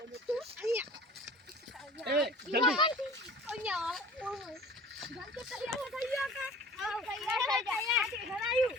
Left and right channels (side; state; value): both; normal; correlation 0.44